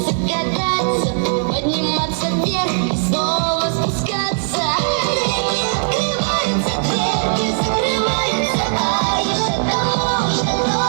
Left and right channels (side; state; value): left; silent; 67 dB below the other